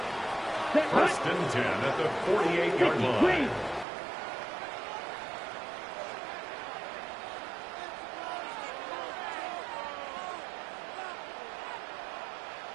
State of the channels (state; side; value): drops out; left; at 3.9 s